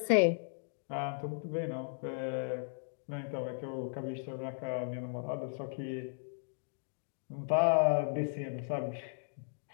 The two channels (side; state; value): right; silent; digital silence